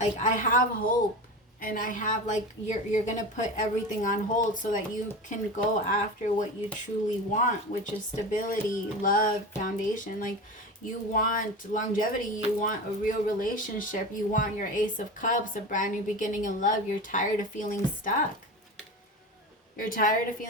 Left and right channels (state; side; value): normal; both; correlation 0.28